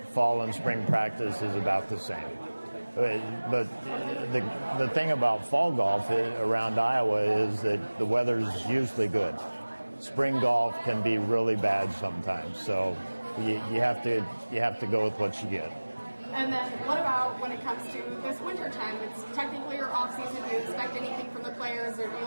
Fall and spring practice is about the same. But the thing about fall golf around Iowa is that the weather's usually good. Spring golf can be really bad sometimes, so you have to go with what you get. And then what about when it comes to this winter time? It's technically your off season. Do you expect anything from the players, or do you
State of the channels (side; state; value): both; inverted; correlation -1.00